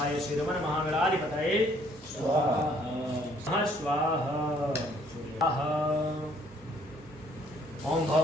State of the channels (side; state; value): both; normal; correlation 0.63